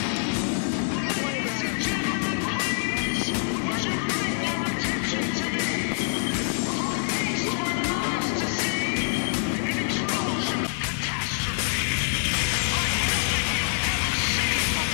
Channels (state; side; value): silent; right; digital silence